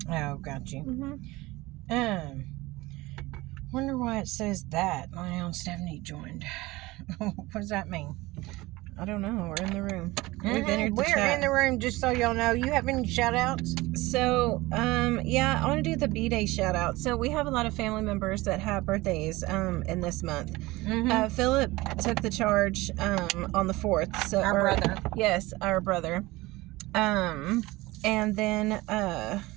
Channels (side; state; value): left; quieter; 20.3 dB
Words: Oh, got you. Wonder why it says that. Lynelle and Stephanie joined. What does that mean? I don't know. We're in the room. We're in the room, just so y'all know. You have any shout outs? So, yeah, I want to do the B-Day shout out. So we have a lot of family members that have birthdays in this month. Philip took the charge on the 4th. So our brother. Yes, our brother. And then,